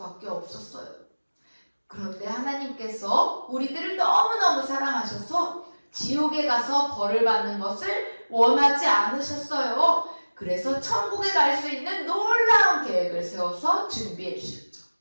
없었어요. 그런데 하나님께서 우리들을 너무너무 사랑하셔서 지옥에 가서 벌을 받는 것을 원하지 않으셨어요. 그래서 천국에 갈 수 있는 놀라운 계획을 세워서 준비해 주셨죠.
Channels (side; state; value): both; inverted; correlation -1.00